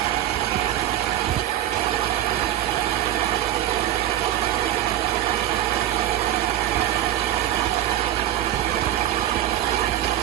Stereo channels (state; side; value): quieter; left; 12.6 dB